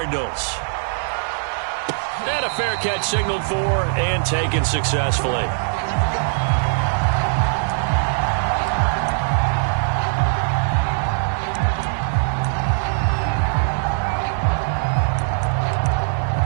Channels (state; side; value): silent; left; digital silence